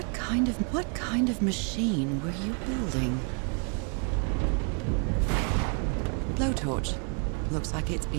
kind of machine were you building? Blowtorch. Looks like it's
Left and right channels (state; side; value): quieter; left; 39.5 dB